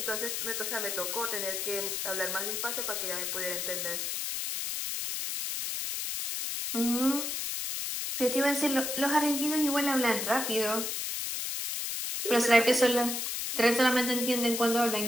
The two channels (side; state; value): left; noise; hiss, 2 dB below the sound